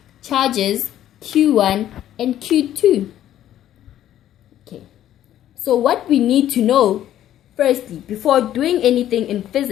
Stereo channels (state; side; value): quieter; right; 11.9 dB